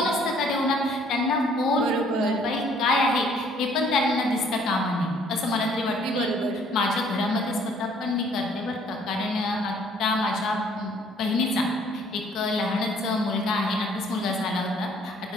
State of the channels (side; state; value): both; normal; correlation 0.60